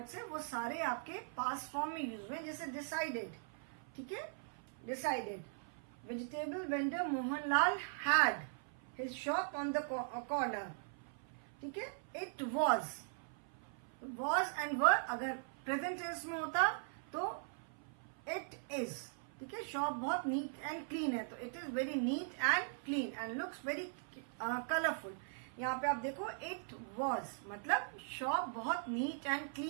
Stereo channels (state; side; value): silent; left; 51 dB below the other